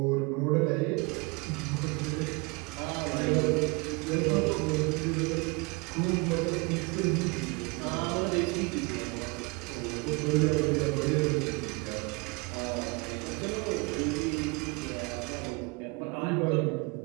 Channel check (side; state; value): left; quieter; 28.0 dB